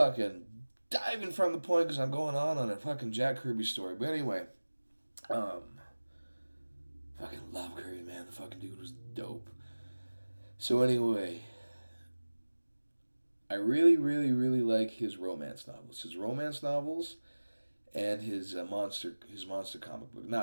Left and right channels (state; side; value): inverted; both; correlation -1.00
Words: diving from the point because I'm going on a fucking Jack Kirby story. But anyway, fucking love Kirby, man. The fucking dude was dope. So anyway, I really, really, really like his romance novels. His romance novels and his monster comic book.